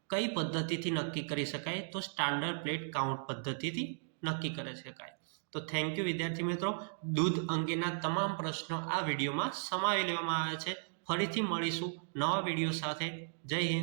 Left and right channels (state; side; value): silent; left; digital silence